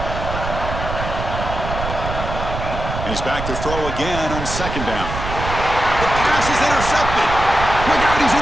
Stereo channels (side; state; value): right; noise; rumble, 6 dB below the sound